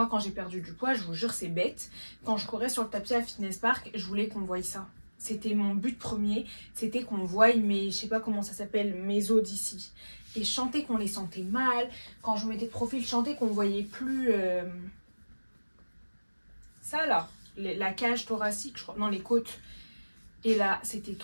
quand j'ai perdu du poids, je vous jure, c'est bête. Quand je courais sur le tapis à Fitness Park, je voulais qu'on voie ça. C'était mon but premier. C'était qu'on voie mes, je sais pas comment ça s'appelle, mes os d'ici. Et je sentais qu'on les sentait mal. Quand je mettais de profil, je sentais qu'on voyait plus... ça là, la cage thoracique, je crois. Non, les côtes. Et là, c'était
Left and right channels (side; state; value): both; inverted; correlation -1.00